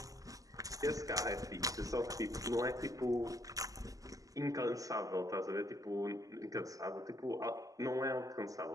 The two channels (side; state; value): left; late; 0.17 ms